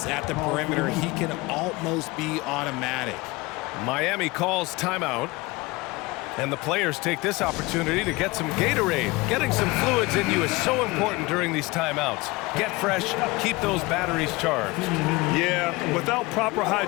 at the perimeter, he can almost be automatic. Miami calls timeout. And the players take this opportunity to get some Gatorade. Getting some fluids in you is so important during these timeouts. Get fresh, keep those batteries charged. Yeah, without proper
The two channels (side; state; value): right; quieter; 23.0 dB